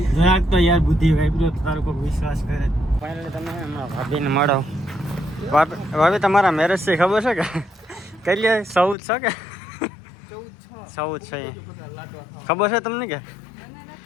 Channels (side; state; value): right; drops out; at 9.0 s